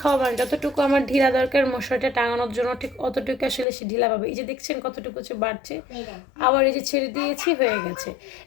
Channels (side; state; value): right; drops out; at 3.7 s